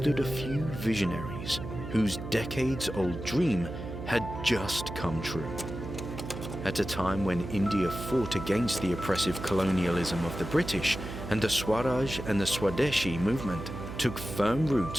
a few visionaries whose decades-old dream had just come true. At a time when India fought against the oppressive colonialism of the British and the Swaraj and the Swadeshi movement took firm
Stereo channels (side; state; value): right; noise; hum, 8 dB below the sound